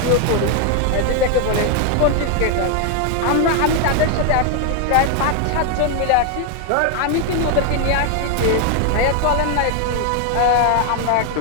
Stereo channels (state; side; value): different; both; correlation 0.01